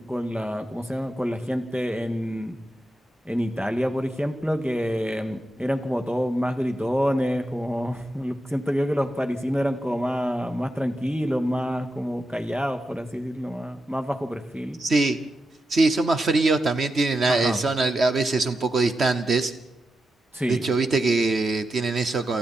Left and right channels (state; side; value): normal; both; correlation 0.88